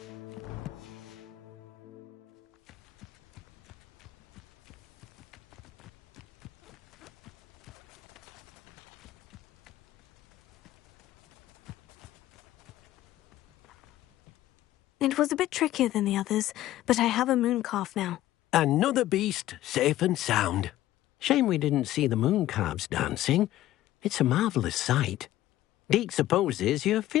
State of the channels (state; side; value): quieter; right; 14.4 dB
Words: It was a bit trickier than the others, but I have a moon calf now. Another beast, safe and sound. Shame we didn't see the moon calves dancing. It's a marvellous sight. Deke supposes you're